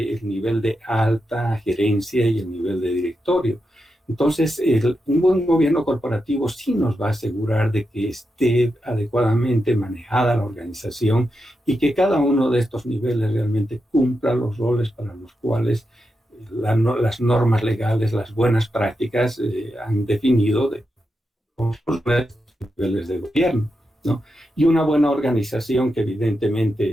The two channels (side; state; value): both; normal; correlation 0.87